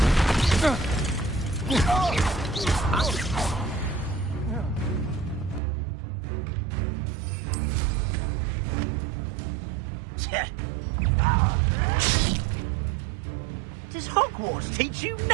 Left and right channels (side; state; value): left; drops out; at 5.6 s